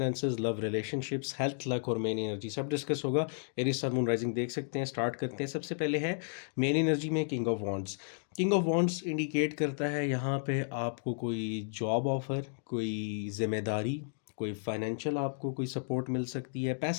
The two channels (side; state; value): right; silent; digital silence